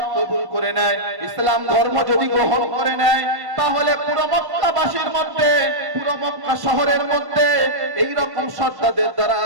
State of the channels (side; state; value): left; late; 1.1 ms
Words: কবুল করে নেয়, ইসলাম ধর্ম যদি গ্রহণ করে নেয়, তাহলে পুরো মক্কাবাসীর মধ্যে, পুরো মক্কা শহরের মধ্যে এই রকম সর্দারদের